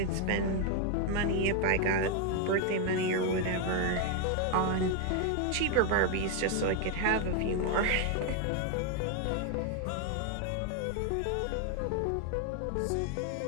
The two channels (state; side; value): different; both; correlation 0.01